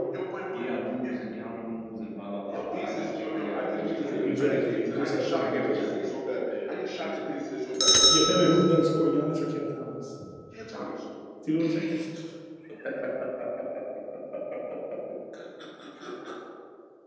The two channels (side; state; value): both; identical; correlation 1.00